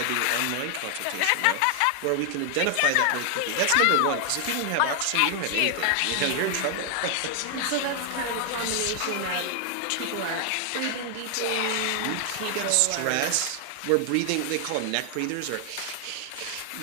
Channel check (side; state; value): both; different; correlation 0.00